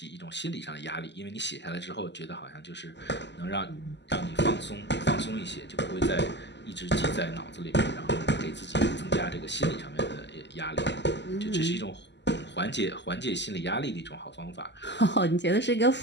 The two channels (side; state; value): right; late; 0.51 ms